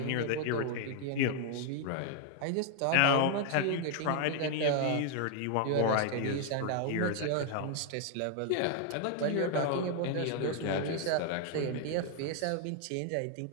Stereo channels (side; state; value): both; different; correlation 0.00